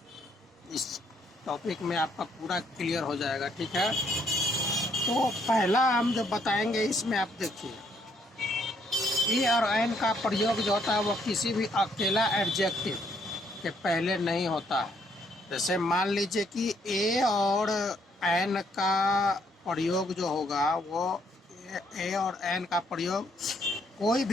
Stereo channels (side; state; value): both; normal; correlation 0.69